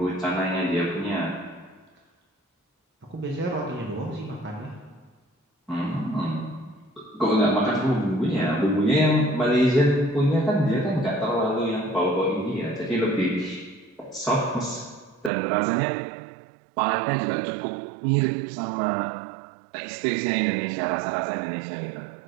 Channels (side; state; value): left; drops out; at 15.3 s